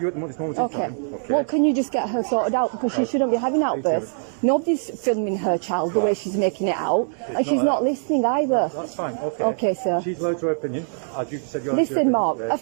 you at this moment in Okay. time. Okay. Well, can you just get her sorted out, because she shouldn't be having outbursts. Nobody's filming her child the way she's making it out, and she's not listening either. That's fine. Okay. Okay, sir. She's allowed to her opinion. As you said, you're allowed to your Listen, opinion. Mark, Yes.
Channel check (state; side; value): silent; left; digital silence